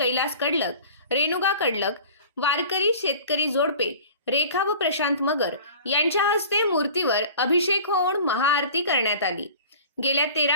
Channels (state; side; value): inverted; both; correlation -0.42